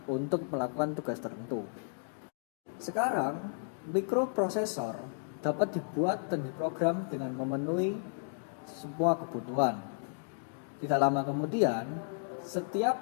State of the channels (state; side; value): silent; right; digital silence